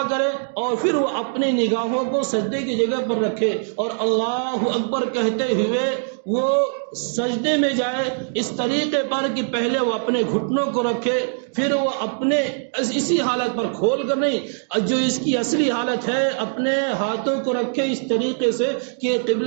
کرے اور پھر وہ اپنی نگاہوں کو سجدے کی جگہ پر رکھے اور اللہ اکبر کہتے ہوئے وہ سجدے میں جائے اس طریقے پر کہ پہلے وہ اپنے گھٹنوں کو رکھے، پھر وہ اپنے اسی حالت پر کھول کر نہیں، جو اس کی اصلی حالت ہے اپنے ہاتھوں کو رکھے اس طریقے سے کہ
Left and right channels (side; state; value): left; silent; digital silence